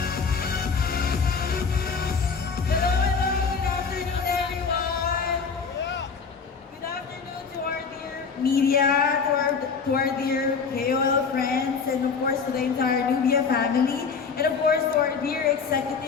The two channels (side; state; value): right; quieter; 5.5 dB